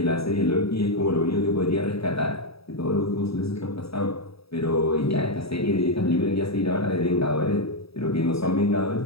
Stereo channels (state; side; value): late; right; 0.77 ms